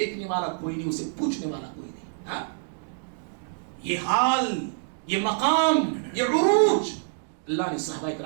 والا کوئی نہیں، اسے پوچھنے والا کوئی نہیں. یہ حال، یہ مقام، یہ عروج اللہ نے صحابہ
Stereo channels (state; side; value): silent; left; digital silence